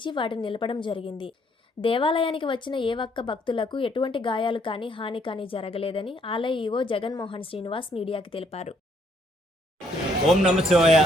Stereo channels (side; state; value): both; normal; correlation 0.68